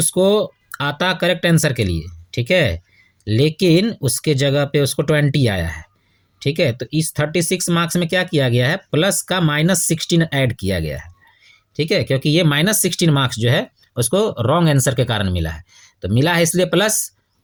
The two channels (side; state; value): both; identical; correlation 1.00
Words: आता करेक्ट आंसर के लिए, ठीक है, लेकिन उसके जगह पे उसको 20 आया है। ठीक है, तो इस 36 मार्क्स में क्या किया गया है, प्लस का माइनस 16 ऐड किया गया है। ठीक है, क्योंकि ये माइनस 16 मार्क्स जो है उसको रॉन्ग आंसर के कारण मिला है, तो मिला है इसलिए प्लस,